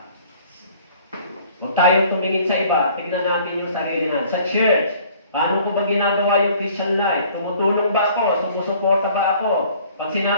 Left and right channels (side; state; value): both; inverted; correlation -0.54